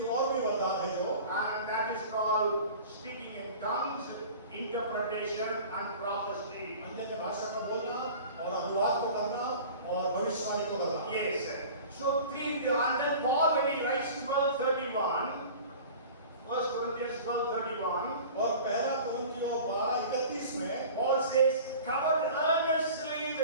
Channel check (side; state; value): both; inverted; correlation -0.41